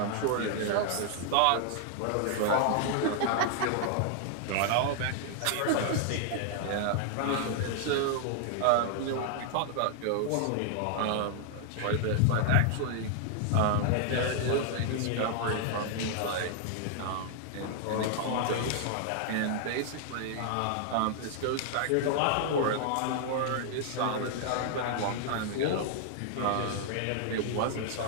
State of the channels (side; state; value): both; different; correlation 0.00